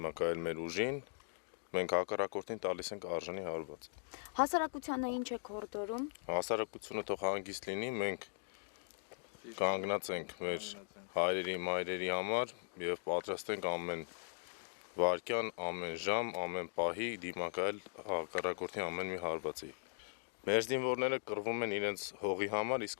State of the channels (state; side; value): silent; right; digital silence